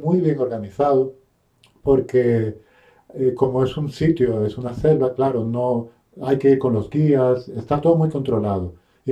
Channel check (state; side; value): identical; both; correlation 1.00